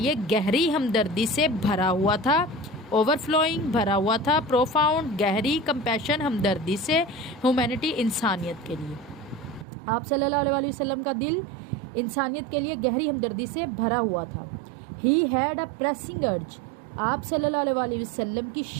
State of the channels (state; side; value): drops out; left; at 9.7 s